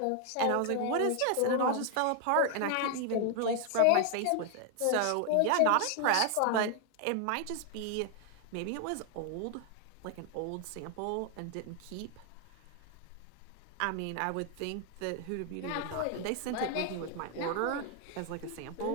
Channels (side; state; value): both; different; correlation 0.00